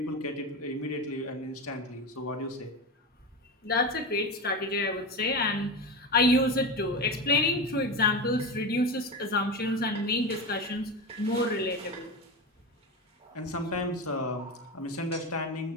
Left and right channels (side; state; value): both; normal; correlation 0.21